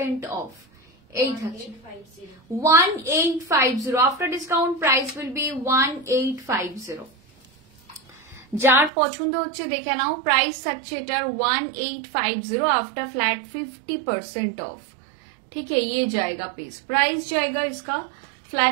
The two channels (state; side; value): drops out; left; at 8.9 s